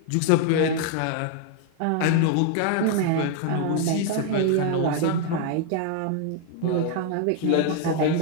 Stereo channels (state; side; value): different; both; correlation 0.00